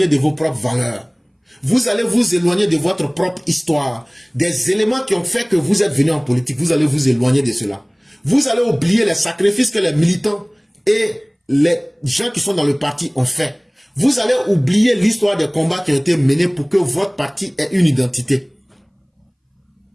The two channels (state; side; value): identical; both; correlation 1.00